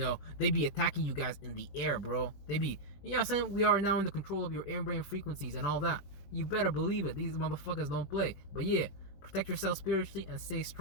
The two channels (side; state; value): right; late; 21 ms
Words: They be attacking you guys in the air, bro. They be, what I'm saying? We are now in the control of your air brain frequencies and all that. You better believe it. These motherfuckers don't play. But yeah, protect yourself spiritually and stay